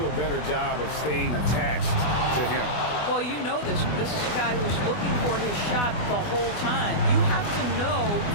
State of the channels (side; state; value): right; late; 24 ms